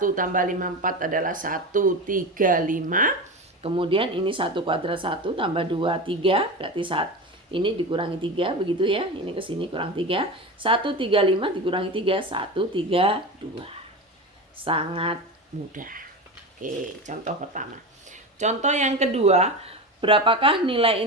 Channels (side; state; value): both; normal; correlation 0.24